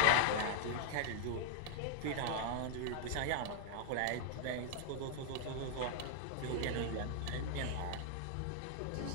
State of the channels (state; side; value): different; both; correlation 0.00